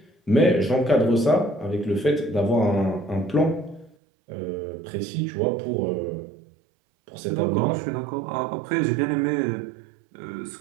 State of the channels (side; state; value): left; drops out; at 4.0 s